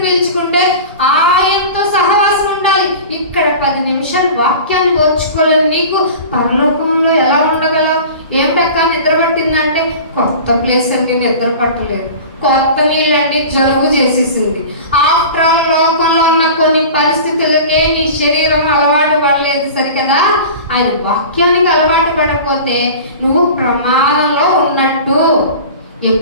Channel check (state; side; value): inverted; both; correlation -0.37